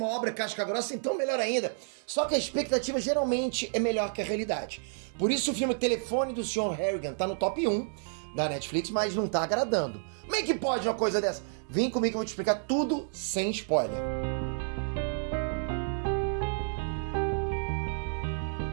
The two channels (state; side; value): silent; left; digital silence